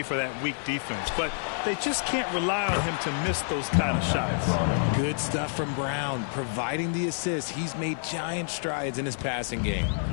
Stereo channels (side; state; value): right; silent; digital silence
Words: for that weak defense, but they just can't rely on him to miss those kind of shots. Good stuff from Brown. Providing the assist, he's made giant strides in his passing game.